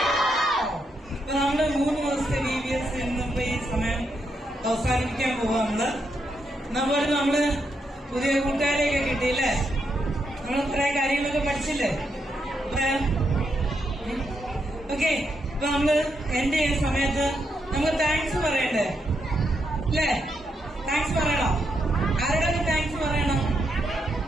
നമ്മള് 3 ദിവസത്തെ VBS ഇന്നിപ്പോ ഈ സമയം അവസാനിപ്പിക്കാൻ പോവാണ്. നമ്മള് പുതിയ കൂട്ടുകാരെയൊക്കെ കിട്ടിയില്ലേ? നമ്മൾ കുറെ കാര്യങ്ങളൊക്കെ പഠിച്ചില്ലേ? ഓക്കെ, ഇപ്പൊ നമ്മള് എന്റെ ഈ സമയത്ത് നമുക്ക് താങ്ക്സ് പറയണ്ടേ അല്ലേ? താങ്ക്സ് പറയണം. ആരോടൊക്കെ താങ്ക്സ് പറയണം?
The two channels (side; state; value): both; normal; correlation 0.80